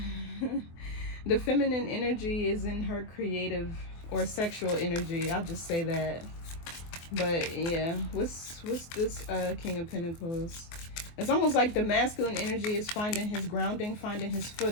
the feminine energy is in her creative or sexual energy. I'll just say that. But yeah, what's this King of Pentacles? It's almost like the masculine energy is finding his grounding, finding his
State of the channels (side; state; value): right; late; 24 ms